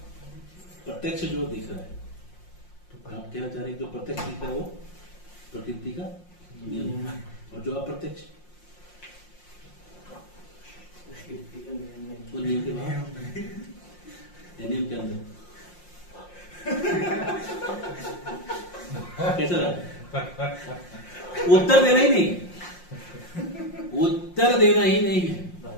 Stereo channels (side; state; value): right; late; 5.6 ms